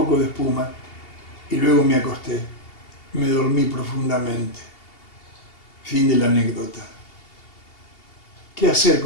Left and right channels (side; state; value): right; late; 2.8 ms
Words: de espuma y luego me acosté. Me dormí profundamente. Fin de la anécdota. ¿Qué hacer